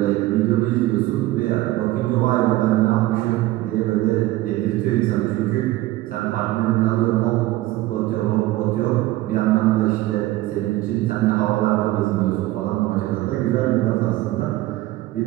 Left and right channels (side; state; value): left; quieter; 17.0 dB